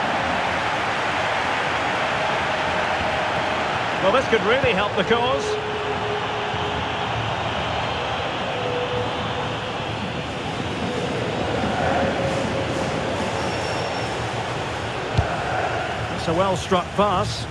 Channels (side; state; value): both; identical; correlation 1.00